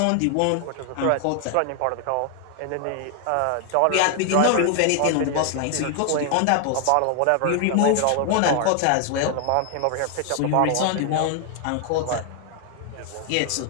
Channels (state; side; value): different; both; correlation 0.00